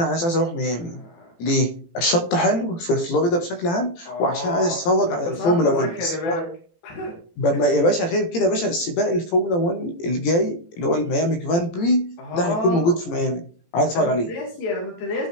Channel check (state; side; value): late; right; 18 ms